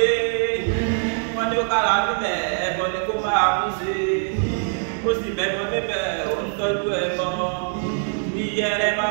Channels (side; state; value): left; silent; digital silence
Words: Wọ́n ní ó kára bíbẹ̀ ẹ̀bọ ni kó máa kú sí. Ó sì bẹ̀bọ̀ bíbẹ̀ ó ń tọ́jú ẹ̀bọ. Iyẹrẹ